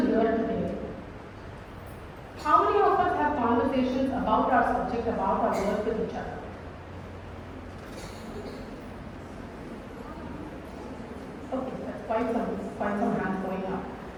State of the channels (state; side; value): identical; both; correlation 1.00